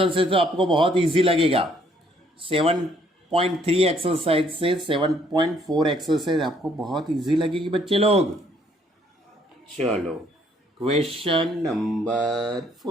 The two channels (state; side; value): normal; both; correlation 0.65